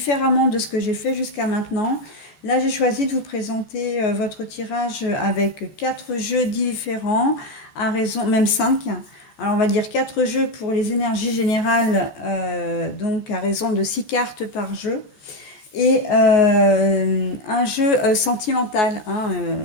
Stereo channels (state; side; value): late; right; 14 ms